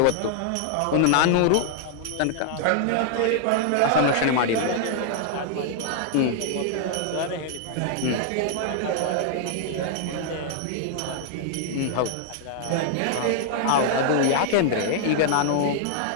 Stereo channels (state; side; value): different; both; correlation -0.01